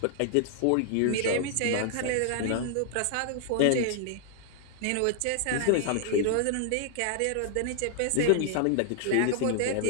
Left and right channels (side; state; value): both; different; correlation 0.00